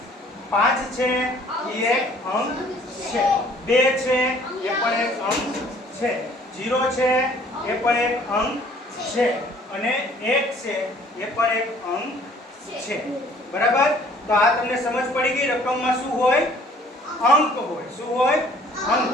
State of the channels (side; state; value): both; normal; correlation 0.56